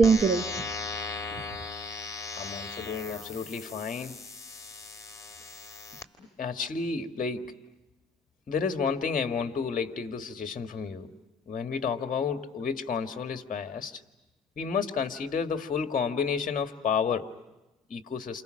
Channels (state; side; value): normal; both; correlation 0.53